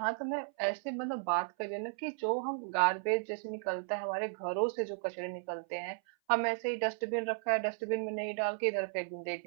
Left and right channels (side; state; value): left; silent; 55 dB below the other